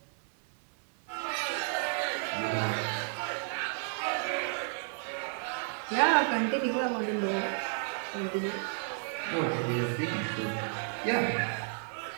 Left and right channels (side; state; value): left; silent; 56 dB below the other